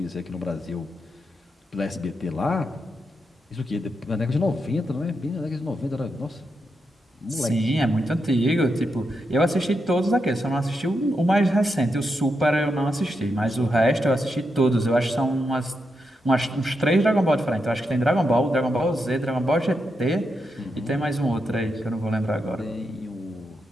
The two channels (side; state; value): both; normal; correlation 0.84